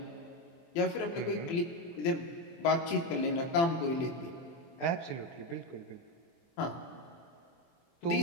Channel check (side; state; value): right; late; 24 ms